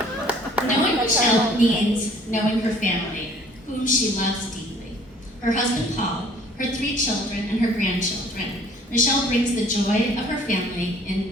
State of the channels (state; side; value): normal; both; correlation 0.55